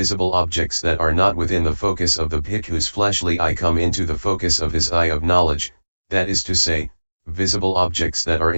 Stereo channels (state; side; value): inverted; both; correlation -1.00